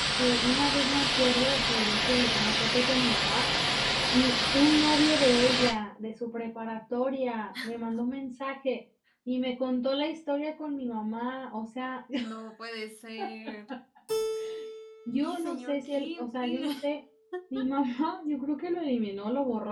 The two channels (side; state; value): both; identical; correlation 1.00